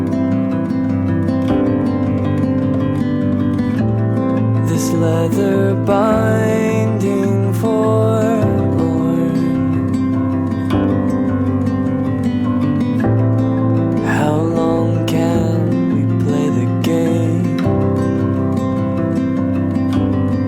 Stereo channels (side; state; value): both; identical; correlation 1.00